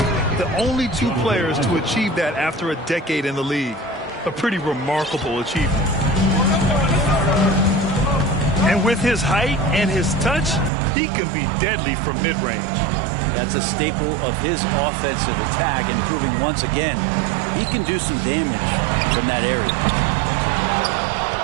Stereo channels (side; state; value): left; drops out; at 10.7 s